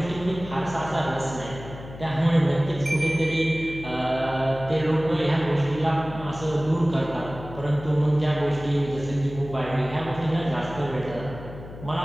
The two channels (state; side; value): noise; left; hum, 14 dB below the sound